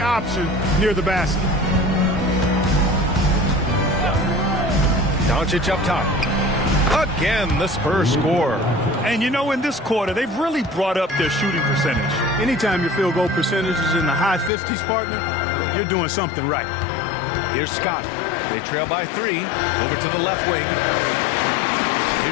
near the basket. Doncic up top. Again, the Spurs score. And you know, in this quarter, they've really brought up their shooting percentage. Anytime your field goal percentage is in the high 50s, partner, you're doing something right. Here's Scott. They trail by 3. Over to the left wing.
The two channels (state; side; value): drops out; right; at 14.5 s